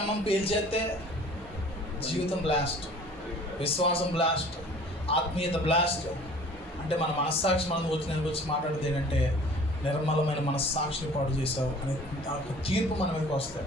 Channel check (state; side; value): normal; both; correlation 0.48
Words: పేల్చేస్తే జీవితం బ్లాస్ట్, విశ్వాసం బ్లాస్ట్, ఆత్మీయత బ్లాస్ట్. అంటే మన మనస్సాక్షి మనం వచ్చి మాట్లాడేది ఏంటంటే, నిర్మలమైన మనస్సాక్షిని పాడు చేసావు అనే తీర్పు మన మీదకి వస్తాయి.